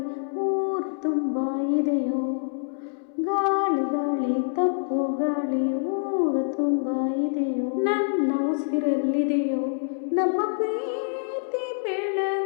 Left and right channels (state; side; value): silent; right; 61 dB below the other